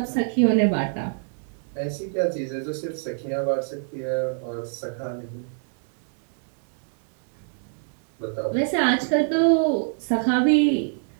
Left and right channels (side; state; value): left; silent; digital silence